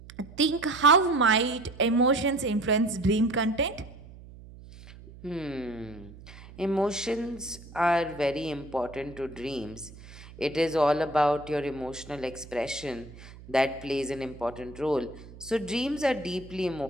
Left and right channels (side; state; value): right; noise; hum, 18 dB below the sound